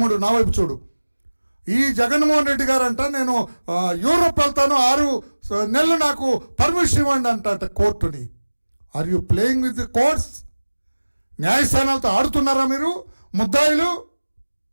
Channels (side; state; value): both; inverted; correlation -1.00